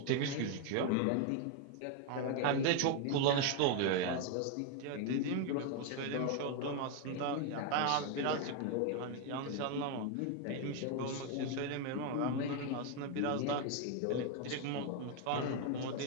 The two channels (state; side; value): different; both; correlation 0.01